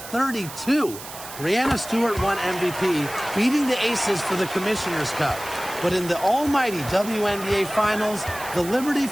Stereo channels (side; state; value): right; noise; hiss, 13 dB below the sound